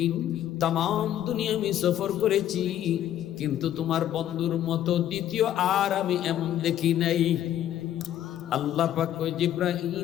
তাম দুনিয়া আমি সফর করেছি, কিন্তু তোমার বন্ধুর মতো দ্বিতীয় আর আমি এমন দেখি নাই। আল্লাহ পাক কয় জিব্রাইল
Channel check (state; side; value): quieter; right; 11.5 dB